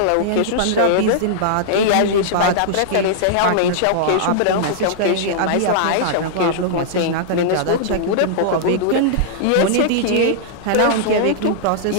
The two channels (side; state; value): both; different; correlation -0.02